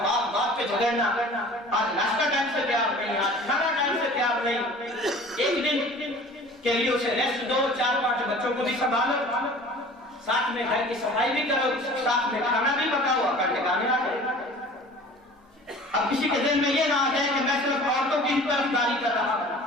بات بات پہ جھگڑنا، آج ناشتہ ٹائم سے تیار نہیں، آج کھانا ٹائم سے تیار نہیں۔ ایک دن کے لیے اسے ریسٹ دو، 4-5 بچوں کو بھی سنبھالو، ساتھ میں گھر کی صفائی بھی کرو، ساتھ میں کھانا بھی پکاؤ، اکڑ ٹکانے آ جائے۔ اب کسی کے دل میں یہ نہ آ جائے کہ میں صرف عورتوں کی طرفداری کر رہا ہوں،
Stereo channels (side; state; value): both; normal; correlation 0.44